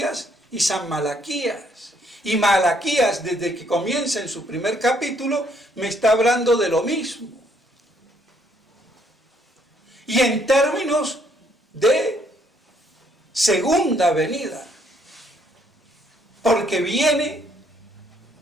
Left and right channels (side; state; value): both; normal; correlation 0.68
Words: y San Malaquías. Y Malaquías, desde que comienza en su primer capítulo, me está hablando de lo mismo. Y en términos de segunda venida. Porque viene